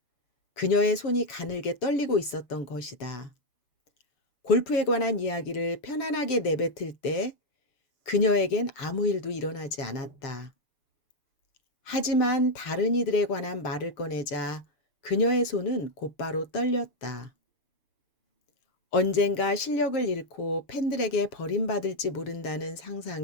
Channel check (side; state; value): right; late; 6.9 ms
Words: 그녀의 손이 가늘게 떨리고 있었던 것이다. 골프에 관한 이야기를 편안하게 내뱉을 때 그녀에겐 아무 일도 일어나지 않았다. 하지만 다른 이들에 관한 말을 꺼내자 그녀의 손은 곧바로 떨렸다. 언젠가 실력을 잃고 팬들에게 버림받을지 모른다는